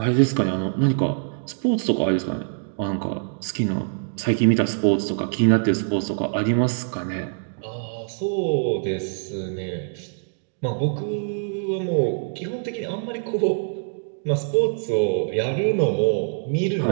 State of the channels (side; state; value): left; silent; digital silence